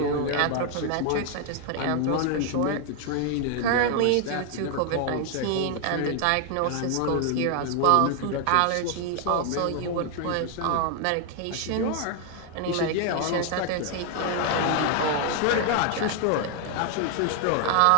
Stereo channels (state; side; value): different; both; correlation 0.00